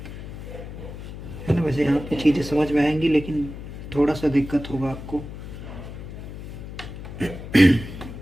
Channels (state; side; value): noise; left; hum, 11 dB below the sound